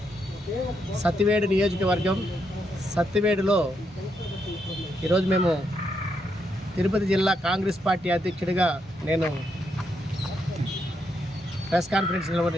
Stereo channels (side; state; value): both; normal; correlation 0.79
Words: సత్యవేడు నియోజకవర్గం సత్యవేడులో ఈరోజు మేము తిరుపతి జిల్లా కాంగ్రెస్ పార్టీ అధ్యక్షుడిగా నేను ప్రెస్ కాన్ఫరెన్స్